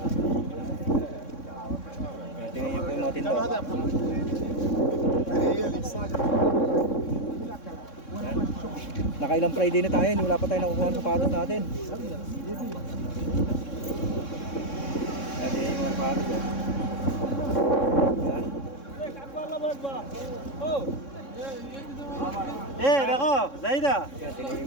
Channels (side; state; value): right; late; 3.6 ms